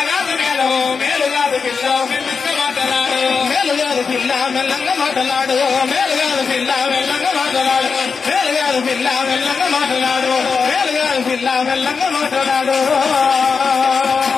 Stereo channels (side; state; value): right; quieter; 5.3 dB